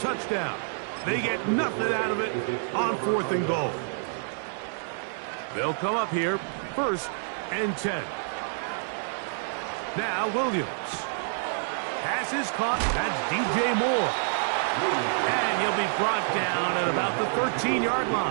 They get nothing out of it on fourth and goal. They'll come up here, first and 10. Now Williams. Pass is caught. That's DJ Moore. And he'll be brought down at about the 13-yard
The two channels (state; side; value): silent; left; digital silence